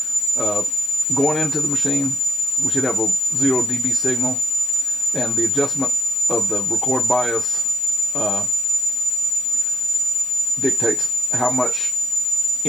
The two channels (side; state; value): left; noise; hiss, 23 dB below the sound